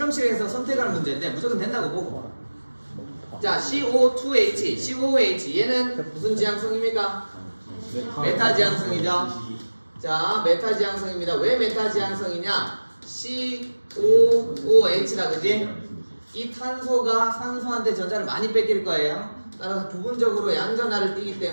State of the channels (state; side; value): inverted; both; correlation -1.00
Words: 선택할 문제인데 무조건 된다고 보고. 자, CO2H, COOH 얘는 무슨 지향성입니까? 메타 지향성이죠. 자, 메타 지향성입니다. 왜 메타 지향성이냐? COOH다, 그지? 이 탄소가 산소한테 전자를 많이 뺏길 거예요. 따라서 부분적으로 양전하를 띠기